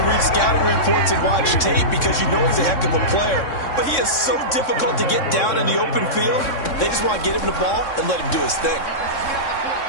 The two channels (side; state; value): right; late; 3.6 ms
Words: read scouting reports and watch tape because you know he's a heck of a player. But he is so difficult to get down in the open field. They just want to get him the ball and let him do his thing.